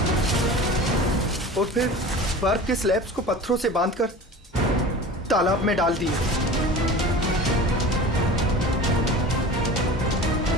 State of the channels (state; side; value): normal; both; correlation 0.36